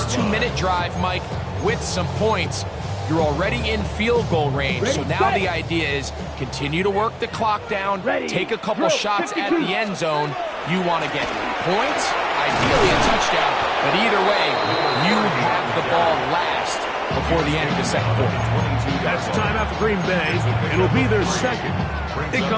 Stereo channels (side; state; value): both; identical; correlation 1.00